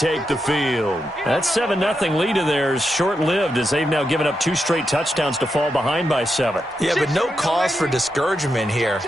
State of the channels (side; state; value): both; normal; correlation 0.85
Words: the field. That 7-0 lead of theirs short-lived as they've now given up 2 straight touchdowns to fall behind by 7. Yeah, but no cause for discouragement here.